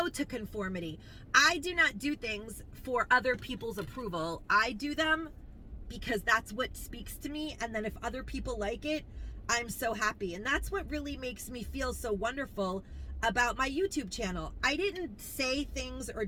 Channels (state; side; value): identical; both; correlation 1.00